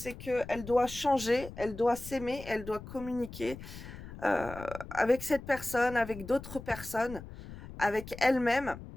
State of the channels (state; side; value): noise; left; rumble, 13 dB below the sound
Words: qu'elle doit changer, elle doit s'aimer, elle doit communiquer avec cette personne, avec d'autres personnes, avec elle-même,